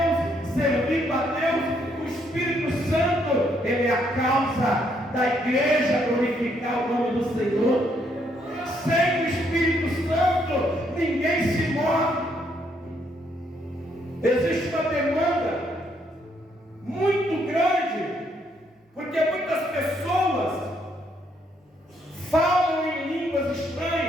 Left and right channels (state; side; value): normal; both; correlation 0.72